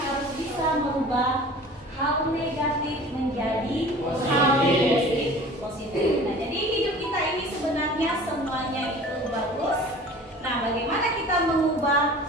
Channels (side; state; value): both; normal; correlation 0.43